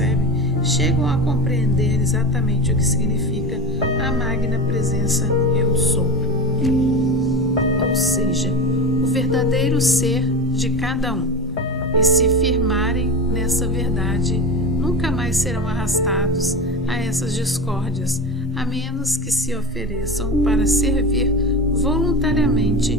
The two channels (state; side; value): normal; both; correlation 0.26